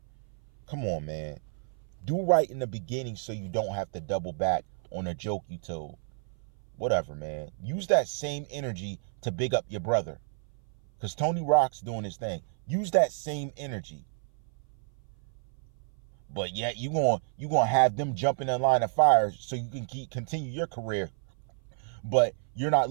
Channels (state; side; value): silent; left; 56 dB below the other